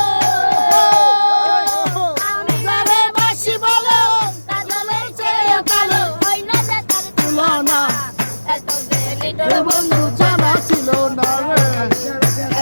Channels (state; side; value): inverted; both; correlation -1.00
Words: আমি যারে বসি ভালো কাজলের সে কালো হয় না যে তার তুলনা এত দেরি তোর বন্ধু জানা ছিল না রে